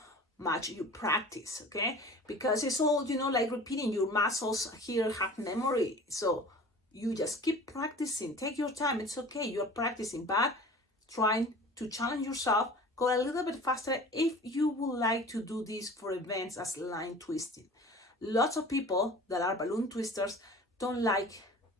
much you practice, okay? Because it's all, like repeating. Your muscles here have memory, so you just keep practicing. Take your time, it's okay, you're practicing, but trying to challenge yourself, go a little bit faster if you would like to do this for events as line twisting. Lots of people that are balloon twisters don't like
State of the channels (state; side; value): normal; both; correlation 0.41